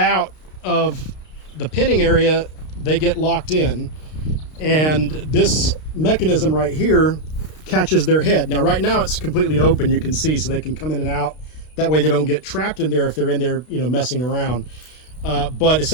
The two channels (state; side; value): late; right; 32 ms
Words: of the pinning area, they get locked in. And this mechanism right here catches their head. Now, right now it's completely open, you can see, so they can come in and out. That way they don't get trapped in there if they're in there, messing around. But